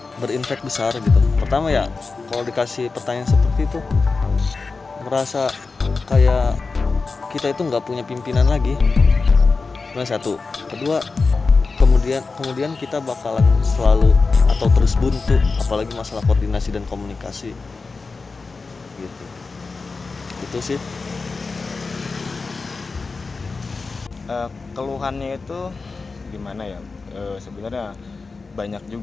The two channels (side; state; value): right; quieter; 4.2 dB